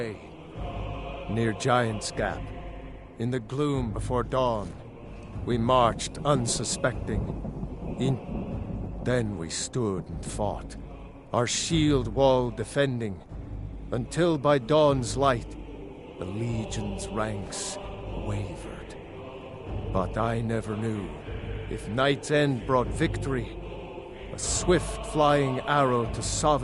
Near Giant's Gap, in the gloom before dawn, we marched unsuspecting. Then we stood and fought, our shield wall defending, until by dawn's light, the Legion's ranks wavered. But I never knew, if night's end brought victory, a swift flying arrow to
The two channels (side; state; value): both; identical; correlation 1.00